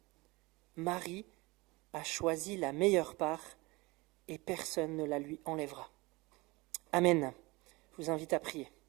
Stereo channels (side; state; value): left; quieter; 23.5 dB